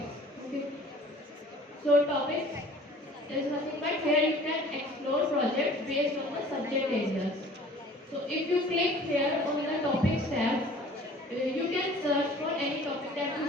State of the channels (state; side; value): normal; both; correlation 0.49